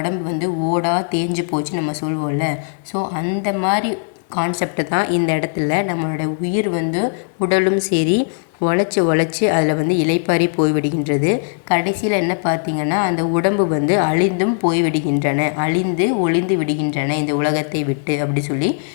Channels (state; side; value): silent; right; 56 dB below the other